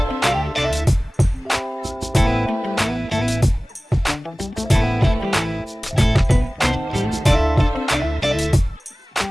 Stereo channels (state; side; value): normal; both; correlation 0.98